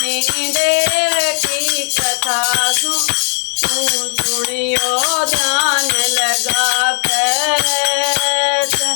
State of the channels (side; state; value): right; silent; digital silence